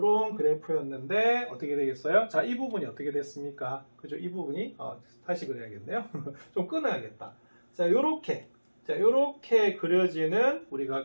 그래프였는데 어떻게 되겠어요? 자, 이 부분이 어떻게 됐습니까? 그죠? 이 부분이 다시 그려야겠네요. 좀 끊어야겠다. 자, 요렇게 그려지는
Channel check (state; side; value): inverted; both; correlation -1.00